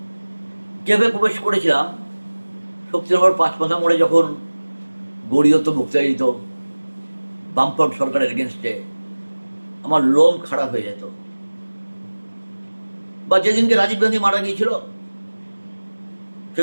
কীভাবে প্রবেশ করেছিলাম, শক্তিনগর পাঁচমাথা মোড়ে যখন গড়িয়ত মুক্তায়িত বামফ্রন্ট সরকারের এগেনস্টে আমার লোম খারাপ হয়ে যেত। বা যেদিনকে রাজীব গান্ধী মারা গিয়েছিল,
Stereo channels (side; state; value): both; inverted; correlation -1.00